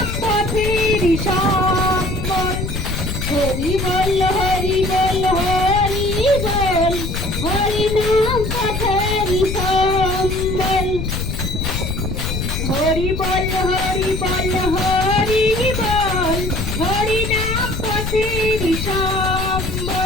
পথের সম্বল। হরি বল, হরি বল, হরি বল, হরি নাম পথের সম্বল। হরি বল, হরি বল, হরি বল, হরি নাম পথের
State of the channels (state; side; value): noise; left; rumble, 4 dB below the sound